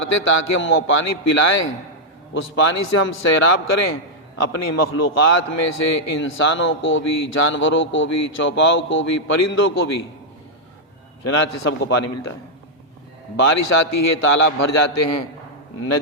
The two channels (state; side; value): normal; both; correlation -0.04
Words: تاکہ ہم وہ پانی پلائیں، اس پانی سے ہم سیراب کریں اپنی مخلوقات میں سے انسانوں کو بھی، جانوروں کو بھی، چوپاؤں کو بھی، پرندوں کو بھی، چنانچہ سب کو پانی ملتا ہے۔ بارش آتی ہے، تالاب بھر جاتے ہیں،